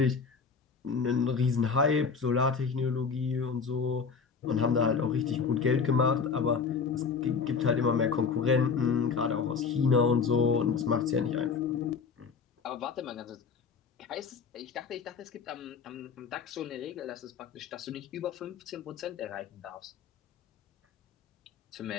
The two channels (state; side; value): quieter; right; 5.5 dB